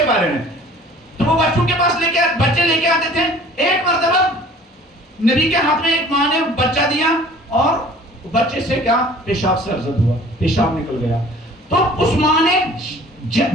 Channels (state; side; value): normal; both; correlation 0.49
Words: میں تو وہ بچوں کے پاس بچے لے کے آتے تھے. ایک مرتبہ نبی کے ہاتھ میں ایک ماں نے بچہ دیا اور بچے سے کیا پیشاب سرزد ہوا، پیشاب نکل گیا. تو اس ماں نے